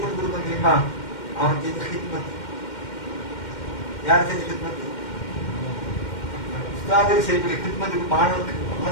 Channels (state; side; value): late; right; 2.1 ms